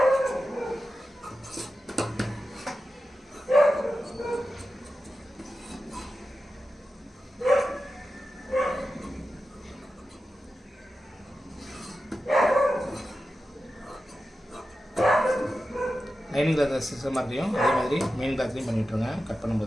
லைனிங் கிளாத் சிஸ்டம் மாதிரியும் அதே மாதிரி மெயின் கிளாத்லையும் பண்ணிவிட்ருங்க கட்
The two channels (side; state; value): both; normal; correlation 0.92